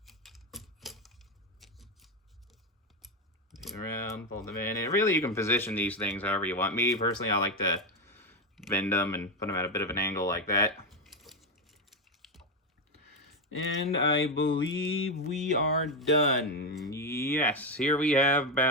Around, fold them in, and really you can position these things however you want. Me personally, I like to bend them and put them at a bit of an angle like that. And I believe we are done. Yes, here we have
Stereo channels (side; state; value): both; normal; correlation 0.09